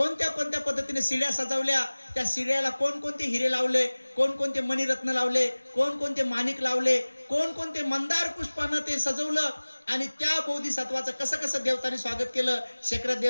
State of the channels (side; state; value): both; inverted; correlation -1.00